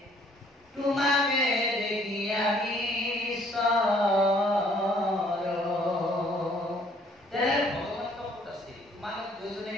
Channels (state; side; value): normal; both; correlation 0.61